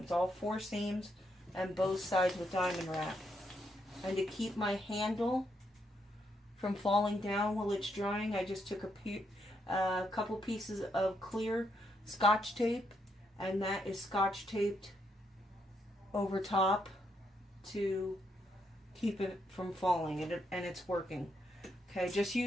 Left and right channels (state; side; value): normal; both; correlation 0.78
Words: all 4 seams and both sides with diamond wrap. And to keep my handle from falling down while it's drying, I just took a couple pieces of clear Scotch tape, and that is Scotch taped over top to keep it from falling, and it's working. Okay, just